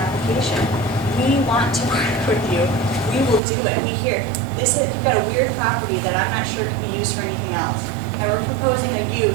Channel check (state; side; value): drops out; left; at 3.4 s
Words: We want to work with you. We will do it. We hear you've got a weird property that I'm not sure can be used for anything else. And we're proposing a